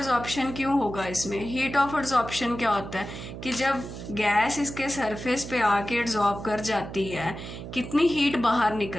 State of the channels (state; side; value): noise; right; hum, 10 dB below the sound